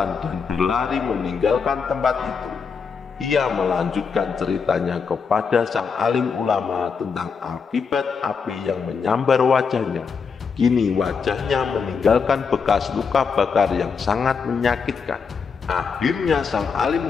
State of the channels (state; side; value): quieter; right; 5.7 dB